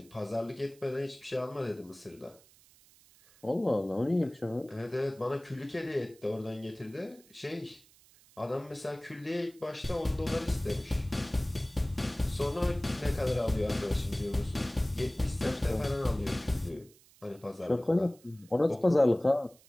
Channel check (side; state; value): right; noise; hiss, 27 dB below the sound